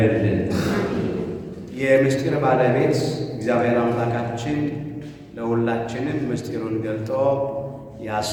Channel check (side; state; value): both; identical; correlation 1.00